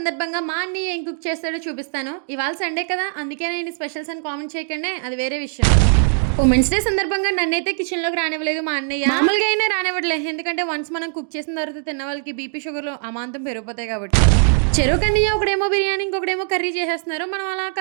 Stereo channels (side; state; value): left; silent; digital silence